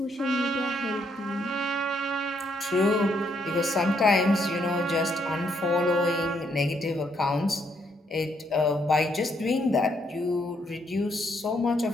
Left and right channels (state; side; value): normal; both; correlation 0.73